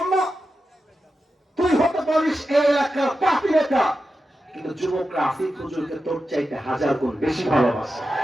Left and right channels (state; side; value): normal; both; correlation 0.90